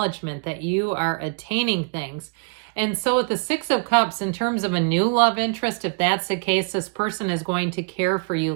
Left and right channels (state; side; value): quieter; left; 35.2 dB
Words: that you are attaining things. And so with the 6 of Cups, in terms of a new love interest, if that's the case, this person is going to care for you